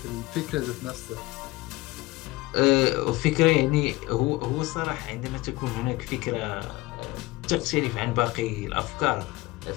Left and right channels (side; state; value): right; quieter; 20.4 dB